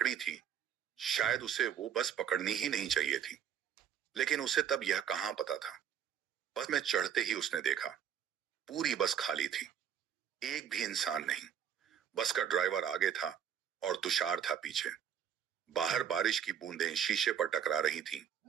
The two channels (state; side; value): quieter; left; 8.8 dB